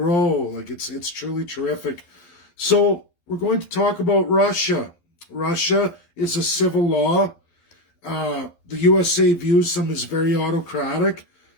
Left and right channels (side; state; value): right; late; 12 ms